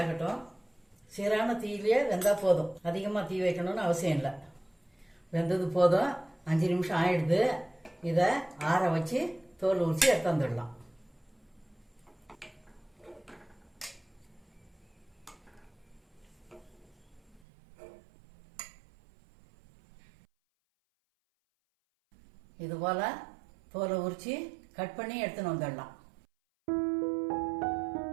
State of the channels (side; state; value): left; drops out; at 17.4 s